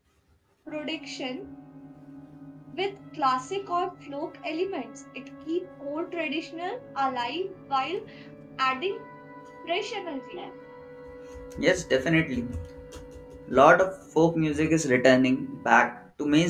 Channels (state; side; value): identical; both; correlation 1.00